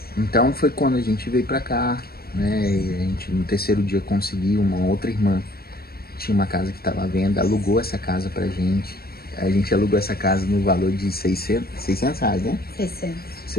Então foi quando a gente veio pra cá, né? E a gente no terceiro dia conseguiu uma outra irmã tinha uma casa que estava à venda, alugou essa casa pra gente. A gente alugou essa casa no valor de 600 reais, né?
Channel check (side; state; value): right; late; 0.45 ms